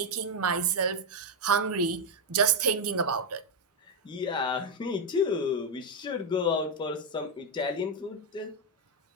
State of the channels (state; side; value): normal; both; correlation 0.03